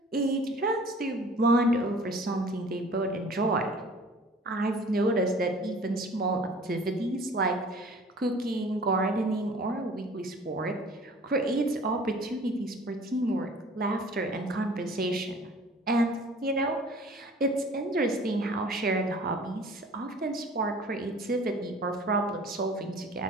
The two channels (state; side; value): normal; both; correlation 0.48